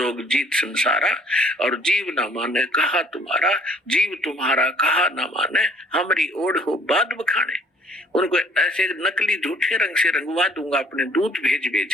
जीत संसारा, और जीव ना माने कहा तुम्हारा, जीव तुम्हारा कहा ना माने, हमारी ओढ़ हो बाद बखाने। उनको ऐसे नकली झूठे रंग से रंगवा दूंगा अपने दूत भेज भेज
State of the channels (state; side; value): normal; both; correlation 0.58